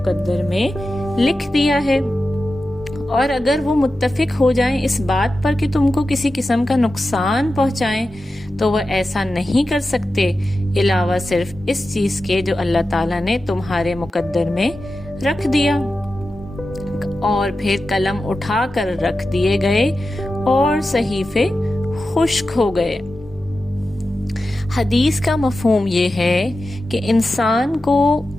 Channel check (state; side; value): normal; both; correlation 0.92